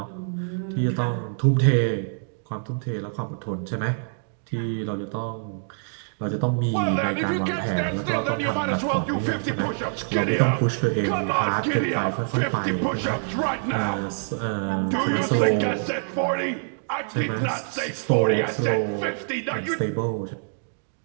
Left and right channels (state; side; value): silent; left; digital silence